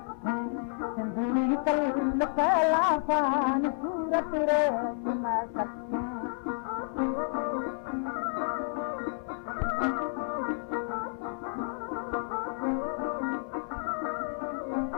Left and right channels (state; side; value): silent; right; 57 dB below the other